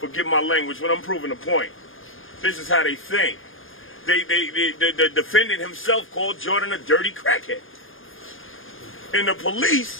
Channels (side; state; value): right; late; 0.59 ms